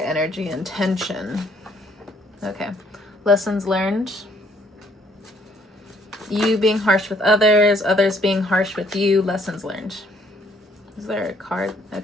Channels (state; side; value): normal; both; correlation 0.65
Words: energy and tension. Okay, lessons learned. You being harsh with others, others being harsh with you, lessons learned. Is there a card?